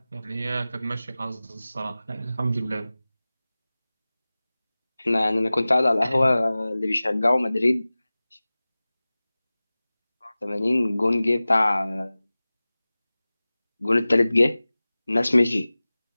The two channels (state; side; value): inverted; both; correlation -0.98